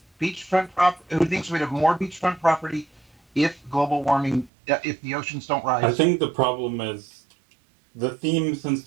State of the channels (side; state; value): left; drops out; at 4.5 s